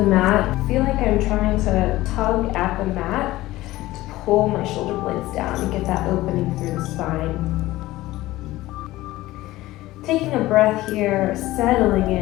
mat. I feel like I'm trying to tug at the mat to pull my shoulder blades down and get that opening through the spine. Taking a breath here, settling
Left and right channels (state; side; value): quieter; right; 17.3 dB